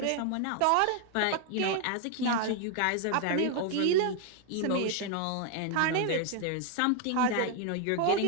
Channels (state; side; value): different; both; correlation 0.00